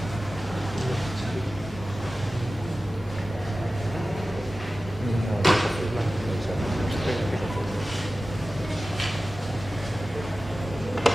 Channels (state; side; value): normal; both; correlation 0.95